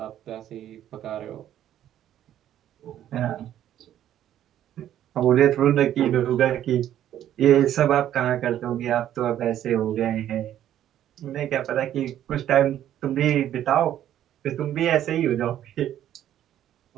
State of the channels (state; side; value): quieter; left; 11.4 dB